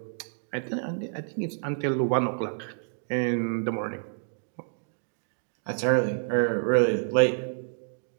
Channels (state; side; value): silent; left; digital silence